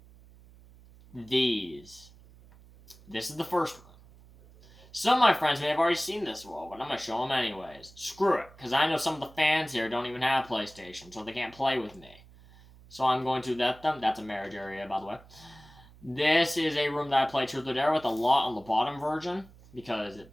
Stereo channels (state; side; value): noise; right; hum, 23 dB below the sound